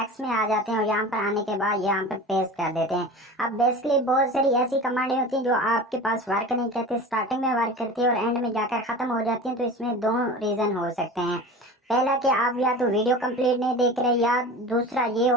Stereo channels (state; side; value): normal; both; correlation 0.34